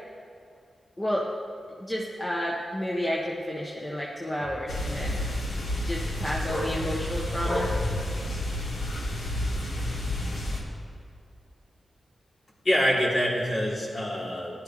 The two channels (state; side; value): normal; both; correlation 0.88